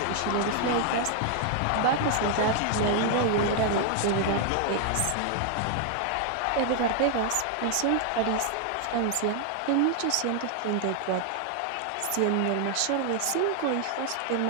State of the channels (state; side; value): different; both; correlation 0.00